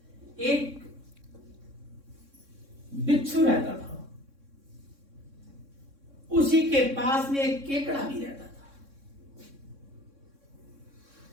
एक बिच्छू रहता था, उसी के पास में एक केकड़ा भी रहता था।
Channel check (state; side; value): late; left; 3.6 ms